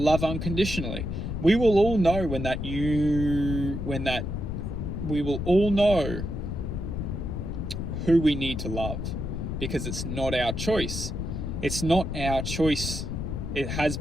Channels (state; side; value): noise; left; rumble, 4 dB below the sound